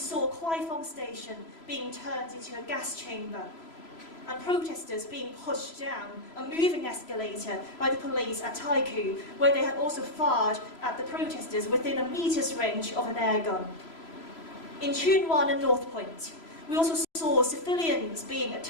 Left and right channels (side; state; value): right; late; 3.0 ms